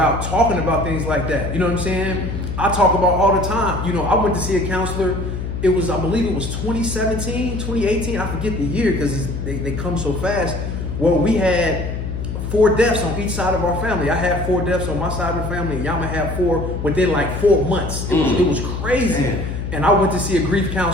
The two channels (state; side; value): noise; left; hum, 5 dB below the sound